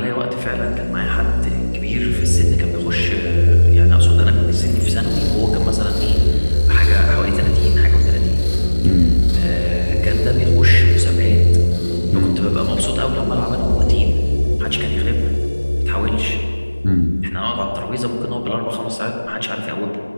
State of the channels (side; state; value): both; inverted; correlation -1.00